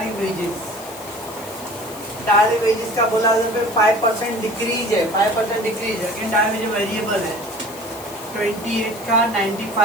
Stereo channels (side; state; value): left; noise; hiss, 16 dB below the sound